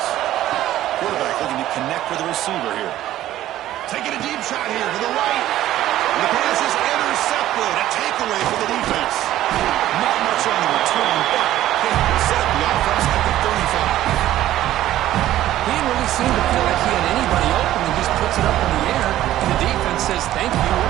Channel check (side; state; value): left; quieter; 13.7 dB